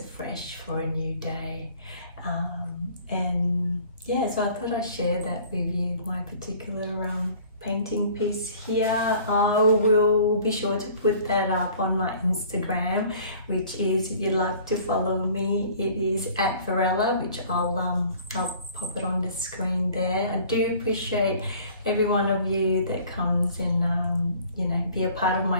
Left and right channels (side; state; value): both; inverted; correlation -0.51